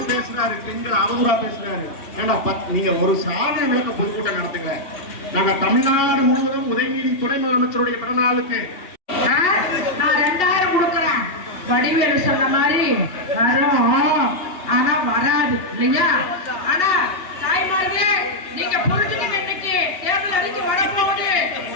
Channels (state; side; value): late; right; 2.7 ms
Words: பேசுறாரு, பெண்கள் அவங்களா பேசுறாரு. நீங்க ஒரு சாதனை விளக்க பொதுக்கூட்டம் நடத்துங்க. நாங்க தமிழ்நாடு முழுவதும் உதயநிதி துணை முதலமைச்சருடைய பிறந்த நாளுக்கு நான் 2000 கொடுக்குறேன். வடிவேலு சொன்ன மாதிரி வரும், ஆனா வராது இல்லையா? ஆனா தாய்மார்களே, நீங்க பொழுதுக்கு இன்னைக்கு தேர்தல் அறிக்கை வரப்போகுது.